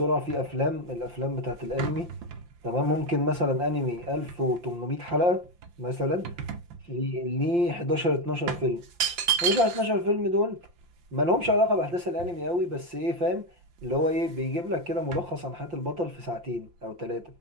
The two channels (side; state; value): left; late; 5.8 ms